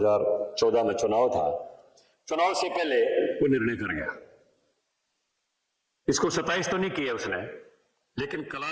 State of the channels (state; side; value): identical; both; correlation 1.00